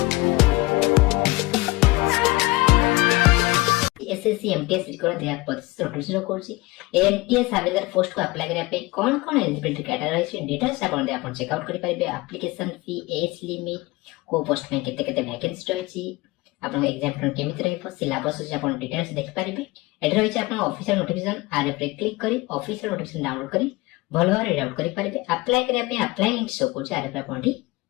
एसएससी एमटीएस रिकॉर्ड 2025 नोटिफिकेशन कोर्सी एमटीएस हविलदार पोस्ट को अप्लाई करिया पे कोन कोन एलिजिबिलिटी क्राइटेरिया छै डिटेल्स आपण दे आपण चेक आउट करि परिबे एप्लीकेशन फी एज लिमिट को पोस्ट में केते केते वैकेंसी रहै छी आपण एग्जाम पैटर्न केमिति रहै सिलेबस छै आपण डिटेल्स देख परिबे एड रहै छै आपण ऑफिशियल नोटिफिकेशन आर पे क्लिक करी ऑफिशियल नोटिफिकेशन डाउनलोड करी भलो रीड आउट करि परिबे अप्लाई करिया पे अप्लाई लिंक शो को आर पे आपण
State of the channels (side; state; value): right; quieter; 21.8 dB